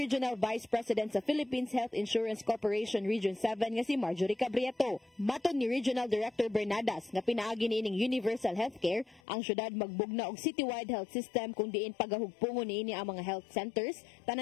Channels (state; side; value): drops out; right; at 9.2 s